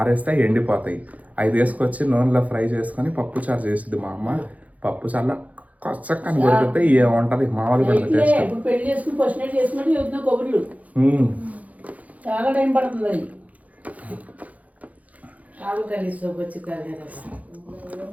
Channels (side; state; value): left; late; 0.072 ms